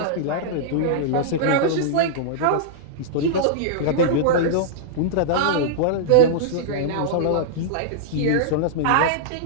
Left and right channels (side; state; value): both; different; correlation -0.02